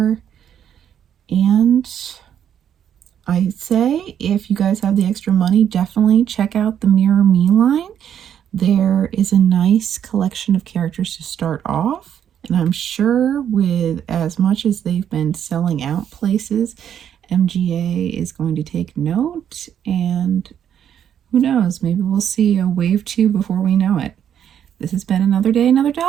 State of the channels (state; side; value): quieter; left; 9.3 dB